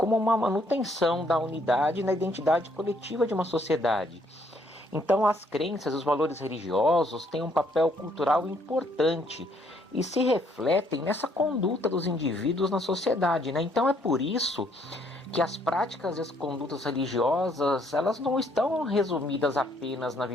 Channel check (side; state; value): both; normal; correlation 0.68